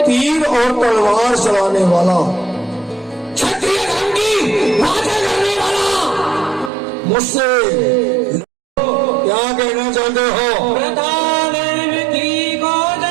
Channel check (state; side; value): drops out; left; at 6.7 s